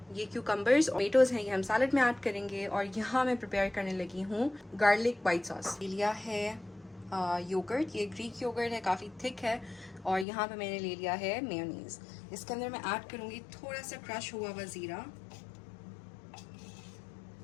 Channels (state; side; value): drops out; right; at 10.2 s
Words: ये क्यूकम्बर्स और टोमेटोज़ हैं, ये हम सैलड में ऐड करेंगे। और यहाँ मैं प्रिपेयर करने लगी हूँ गार्लिक वाइट सॉस। लिया है योगर्ट, ये ग्रीक योगर्ट है, काफ़ी थिक है। और यहाँ पे मैंने ले लिया है मेयोनीज़। इसके अंदर मैं ऐड करूँगी थोड़ा सा क्रश हुआ हुआ ज़ीरा,